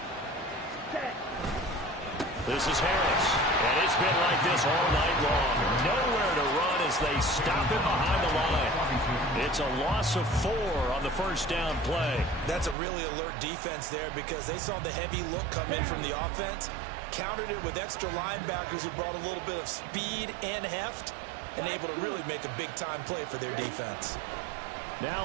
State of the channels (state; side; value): drops out; left; at 12.8 s